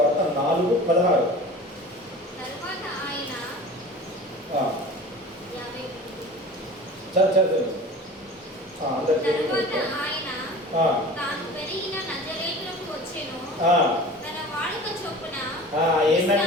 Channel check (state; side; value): normal; both; correlation 0.39